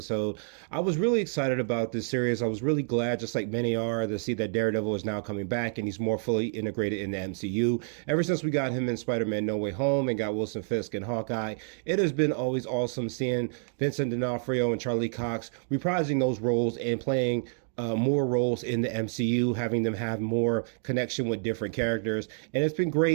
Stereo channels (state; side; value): silent; left; digital silence